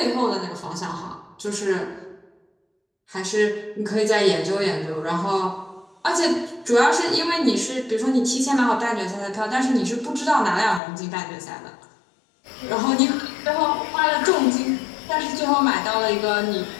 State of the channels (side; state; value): right; drops out; at 10.8 s